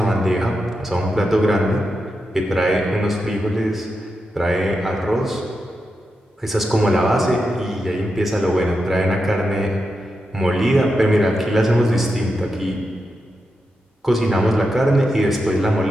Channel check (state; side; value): normal; both; correlation 0.87